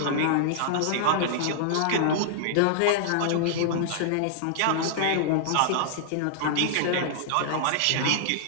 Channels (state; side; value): different; both; correlation -0.01